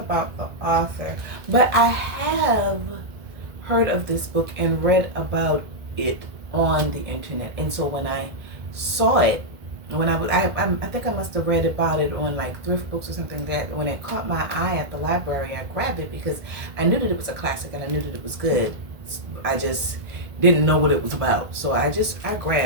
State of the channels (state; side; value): late; left; 1.7 ms